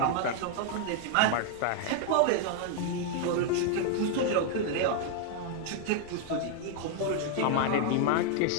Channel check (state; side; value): different; both; correlation 0.00